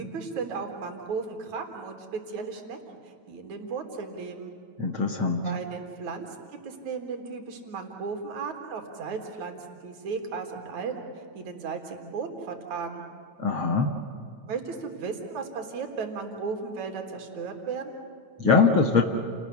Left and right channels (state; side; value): late; left; 9.4 ms